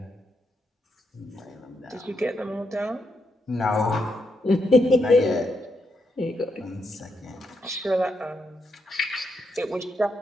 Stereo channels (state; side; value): normal; both; correlation 0.80